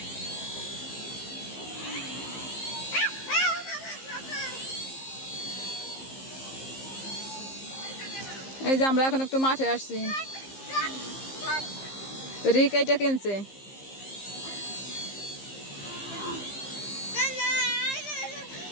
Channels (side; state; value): right; late; 15 ms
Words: এই যে আমরা এখন একটু মাঠে আসছি। রিক এইটা কিনছে।